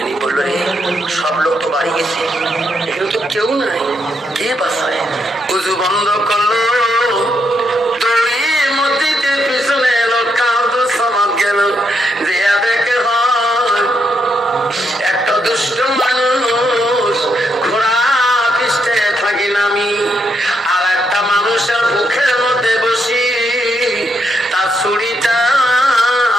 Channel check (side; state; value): both; normal; correlation 0.78